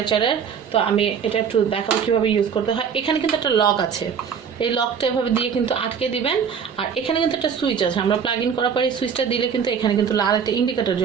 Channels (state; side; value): quieter; left; 7.0 dB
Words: তো আমি এটা একটু দেখাবো কীভাবে ইউজ করতে হয়। এখানে কিন্তু একটা লক আছে, এই লকটা এভাবে দিয়ে কিন্তু আটকে দিবেন। আর এখানে কিন্তু একটা সুইচ আছে, আমরা প্লাগ ইন করার পরে এই সুইচটা দিলে কিন্তু এখানে কিন্তু লাল একটা ইন্ডিকেটর